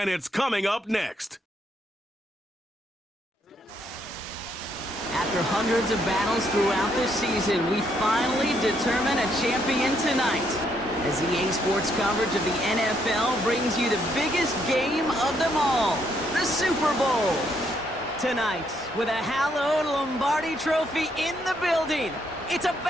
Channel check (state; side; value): normal; both; correlation 0.73